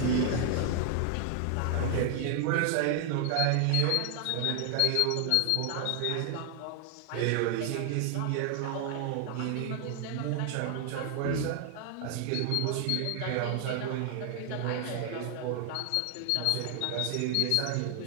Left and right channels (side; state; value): both; different; correlation 0.00